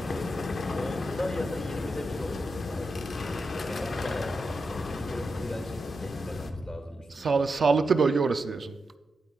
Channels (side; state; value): both; normal; correlation 0.87